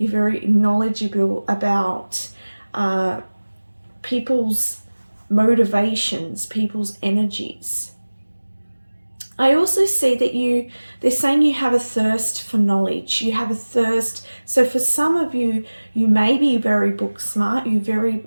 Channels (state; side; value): inverted; both; correlation -1.00